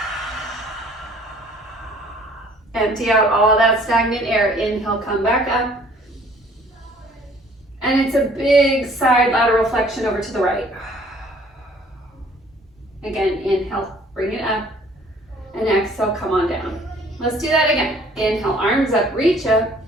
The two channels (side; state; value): both; normal; correlation 0.56